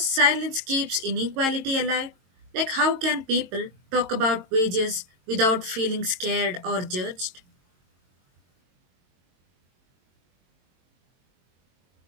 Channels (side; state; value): left; late; 22 ms